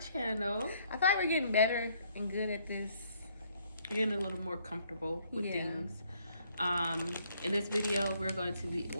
I feel like we're getting better and good at this. Getting a little more comfortable with things. In this video, we're going to be,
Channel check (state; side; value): inverted; both; correlation -0.66